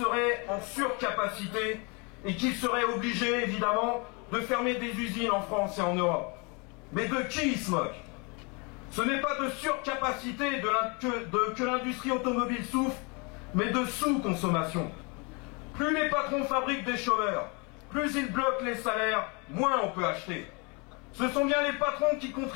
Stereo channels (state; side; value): quieter; right; 31.4 dB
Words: en surcapacité et qu'il serait obligé, évidemment, de fermer des usines en France et en Europe. Mais de qui ils se moquent? Ce n'est pas de surcapacité que l'industrie automobile souffre, mais de sous-consommation. Plus les patrons fabriquent des chômeurs, plus ils bloquent les salaires, moins on peut acheter. Ce sont bien les patrons qui